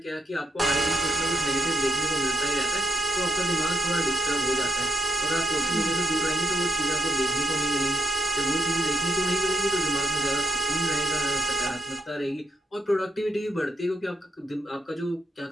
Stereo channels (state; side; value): normal; both; correlation 0.76